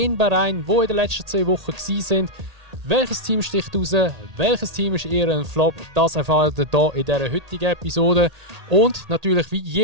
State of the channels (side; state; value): left; late; 1.8 ms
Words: Bahrain, die in den letzten 2 Wochen waren. Welches Team sticht raus? Welches Team ist eher ein Flop? Das erfahrt ihr hier in dieser heutigen Episode. Und natürlich wie